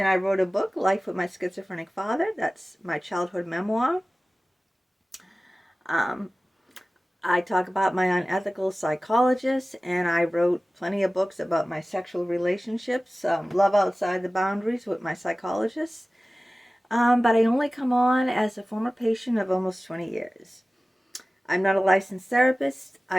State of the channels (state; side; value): normal; both; correlation 0.97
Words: I wrote a book, Life with My Schizophrenic Father. That's my childhood memoir. I talk about my unethical psychologist, and I wrote plenty of books about my sexual relationships, Love Outside the Boundaries with my psychologist. But I only come on as a former patient of almost 20 years. I'm not a licensed therapist.